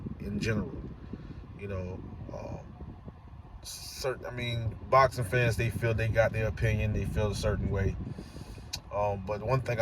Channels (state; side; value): identical; both; correlation 1.00